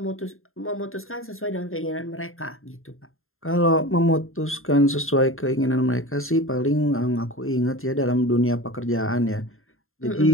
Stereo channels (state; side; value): late; right; 0.61 ms